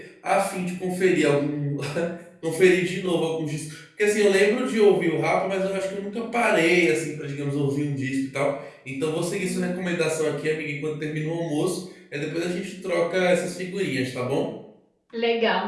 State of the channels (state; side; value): identical; both; correlation 1.00